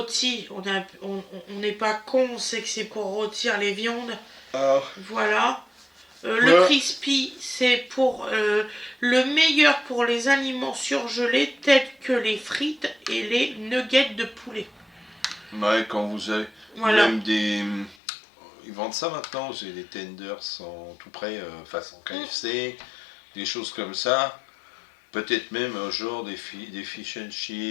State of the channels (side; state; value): right; drops out; at 17.9 s